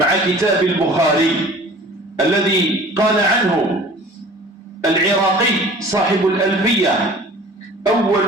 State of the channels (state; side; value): normal; both; correlation 0.45